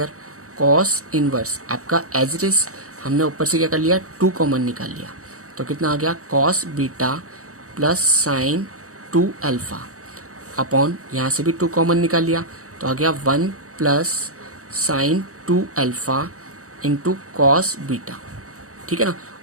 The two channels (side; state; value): left; late; 0.65 ms